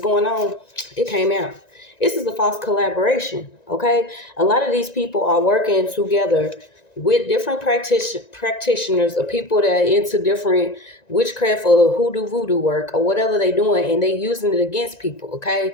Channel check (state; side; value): late; right; 1.9 ms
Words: on, it came out. This is a false collaboration, okay? A lot of these people are working together with different practitioners or people that are into different witchcraft or hoodoo voodoo work or whatever they doing, and they using it against people, okay?